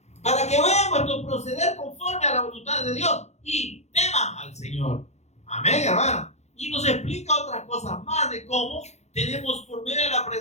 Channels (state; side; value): late; right; 0.32 ms